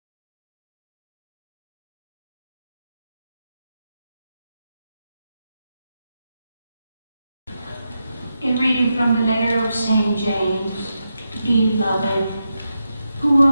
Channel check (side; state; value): both; inverted; correlation -0.87